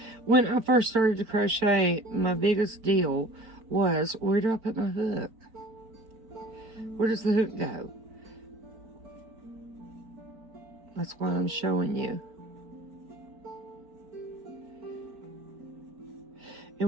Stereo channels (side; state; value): left; late; 4.7 ms